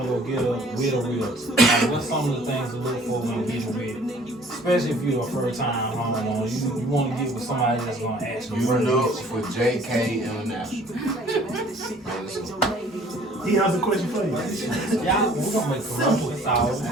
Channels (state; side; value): normal; both; correlation 0.54